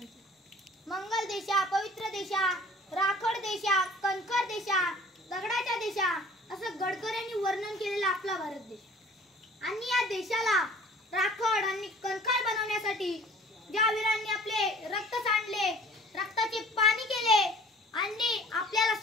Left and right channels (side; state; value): both; normal; correlation 0.49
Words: मंगल देशा, पवित्र देशा, राखड देशा, कणखर देशा, दगडाच्या देशा असं गडकऱ्यांनी वर्णन केलेला आपला भारत देश. आणि या देशाला राखड आणि कणखर बनवण्यासाठी ज्या वीरांनी आपले रक्त सांडले, रक्ताचे पाणी केले आणि आपल्याला